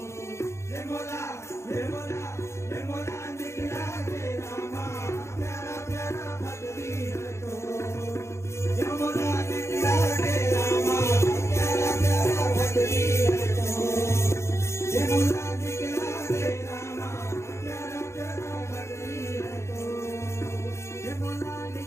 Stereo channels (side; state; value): right; late; 0.13 ms